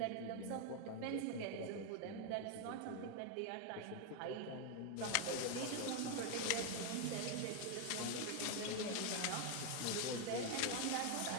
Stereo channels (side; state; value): both; different; correlation 0.01